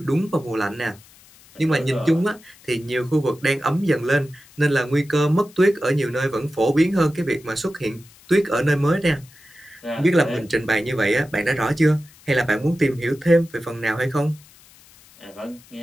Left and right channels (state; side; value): noise; left; hiss, 25 dB below the sound